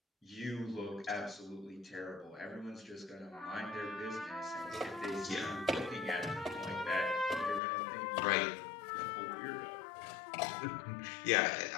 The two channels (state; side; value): drops out; right; at 7.6 s